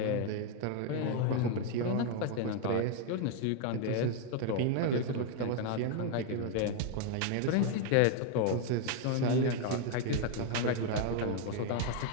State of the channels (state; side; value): different; both; correlation 0.01